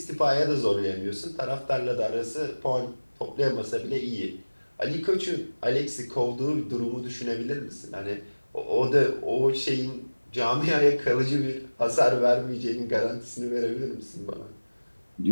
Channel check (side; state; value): both; inverted; correlation -1.00